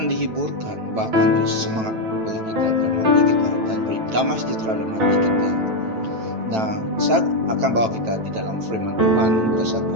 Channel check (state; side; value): late; left; 9.1 ms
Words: dihiburkan, bahkan beri semangat bagi kita dalam hati kita, dan beri damai sejahtera dalam hati kita. Nah, saya akan bawa kita di dalam firman Tuhan